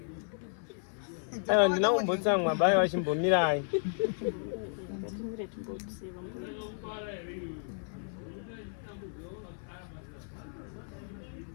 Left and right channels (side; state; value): right; silent; 55 dB below the other